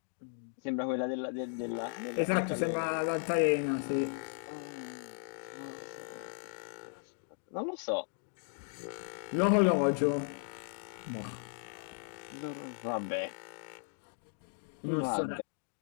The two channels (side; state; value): right; silent; digital silence